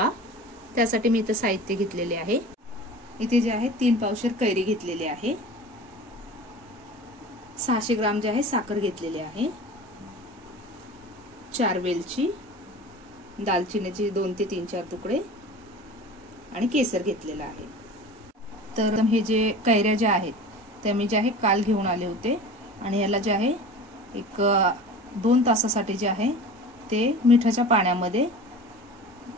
त्यासाठी मी इथे साहित्य घेतलेले आहे। इथे जे आहे 3 पावशेर कैरी घेतलेली आहे, 600 ग्राम जे आहे साखर घेतलेली आहे, 4 वेलची, दालचिनीचे 2 ते 3-4 तुकडे आणि केसर घेतलेला आहे। तर हे जे कैऱ्या ज्या आहेत त्या मी जे आहे काल घेऊन आले होते आणि याला जे आहे एक 2 तासासाठी जे आहे ते मिठाच्या पाण्यामध्ये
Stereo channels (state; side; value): normal; both; correlation 0.37